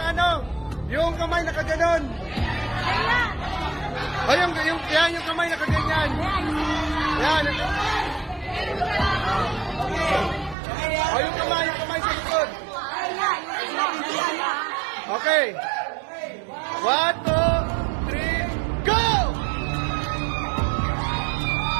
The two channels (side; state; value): left; drops out; at 10.6 s